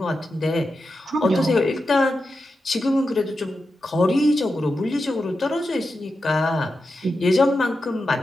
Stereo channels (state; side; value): normal; both; correlation 0.89